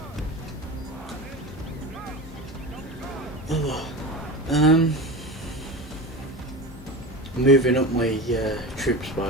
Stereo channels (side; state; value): both; normal; correlation 0.28